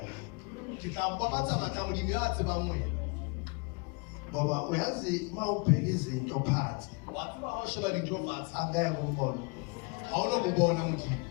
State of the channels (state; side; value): quieter; right; 31.2 dB